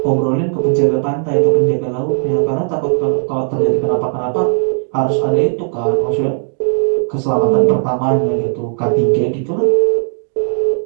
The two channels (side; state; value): left; silent; 69 dB below the other